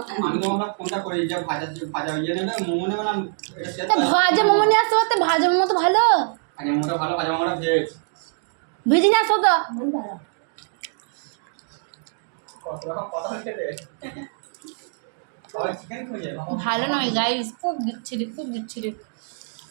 আমি তো আমরা কোনটা করি, যে ভাজা ইয়ে নেবে, মোমো নেবে না, এটা সেটা। ভাজা মোমো নিয়ে আসতে পারতে, ভাজা মোমো তো ভালো। আগে মোমোটা ভালো, ভাজা মোমোটা ভেজ। ভেজে নিয়ে আসো তো। ভালো নয় গাইস, খুব বিচ্ছিরি, খুব বিচ্ছিরি।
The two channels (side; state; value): left; silent; digital silence